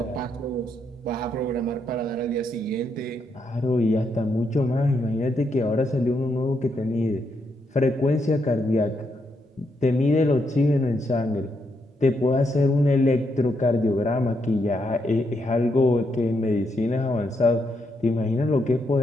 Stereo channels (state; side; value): normal; both; correlation 0.79